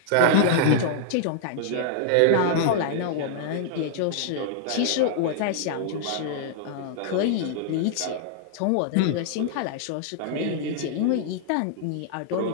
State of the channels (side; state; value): both; different; correlation -0.01